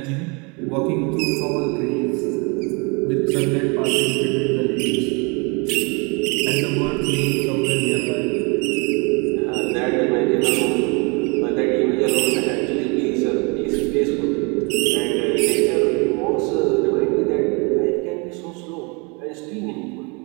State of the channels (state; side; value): quieter; left; 31.0 dB